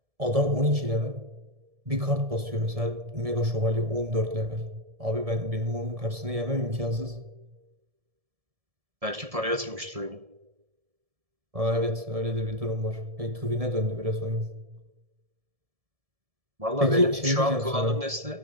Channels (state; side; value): late; left; 1.7 ms